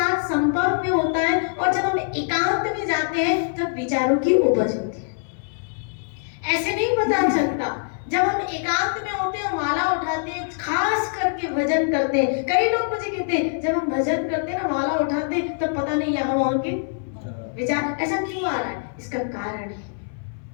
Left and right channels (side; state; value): right; silent; 60 dB below the other